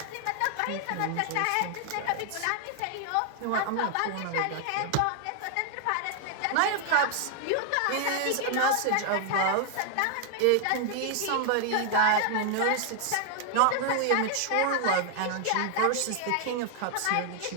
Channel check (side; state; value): both; different; correlation 0.00